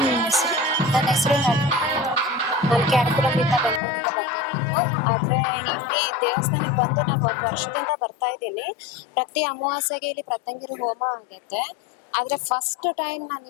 ನಿಮ್ಮ ಹೆಸರು? ನನ್ನ ಹೆಸರು ನಳಿನಿ ಅಂತ. ನಾನು ಕ್ಯಾರಕುಲಂನಿಂದ ಬೆಂಗಳೂರಿಂದ ಬಂದಿರೋದು. ಆದ್ರೆ ಇಲ್ಲಿ ದೇವಸ್ಥಾನಕ್ಕೆ ಬಂದು ನಾನು 1 ವರ್ಷದಿಂದ ಬರ್ತಾ ಇದ್ದೀನಿ. ಪ್ರತಿ ಅಮಾವಾಸ್ಯೆಗೆ ಇಲ್ಲಿ ಪ್ರತ್ಯಂಗಿರಿ ಹೋಮ ಆಗುತ್ತೆ. ಆದ್ರೆ ಫಸ್ಟ್ ಟೈಮ್ ನಾನು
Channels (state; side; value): drops out; right; at 3.8 s